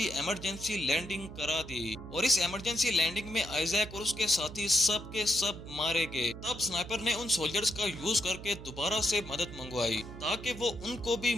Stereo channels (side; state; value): right; noise; hum, 13 dB below the sound